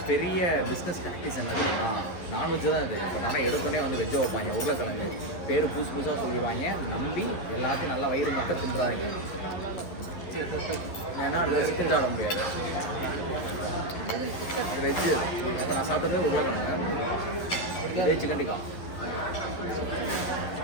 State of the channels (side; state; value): right; late; 11 ms